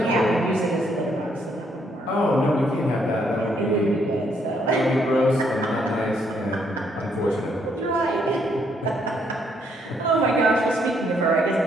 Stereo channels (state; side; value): normal; both; correlation 0.71